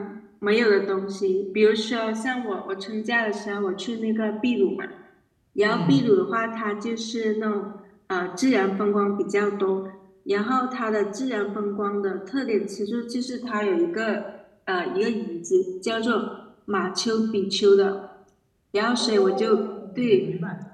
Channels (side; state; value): both; identical; correlation 1.00